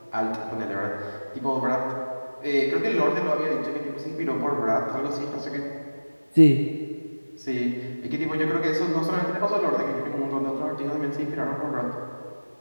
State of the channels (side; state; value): both; inverted; correlation -1.00